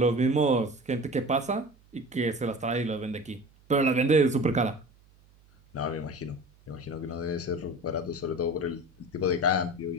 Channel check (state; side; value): noise; right; hum, 29 dB below the sound